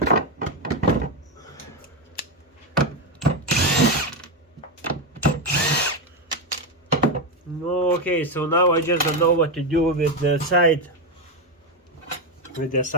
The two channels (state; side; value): normal; both; correlation 0.09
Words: Okay, so now I just don't know what to do with the side, with the